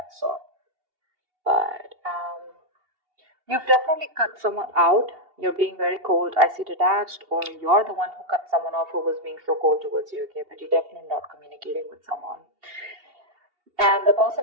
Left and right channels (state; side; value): late; left; 2.8 ms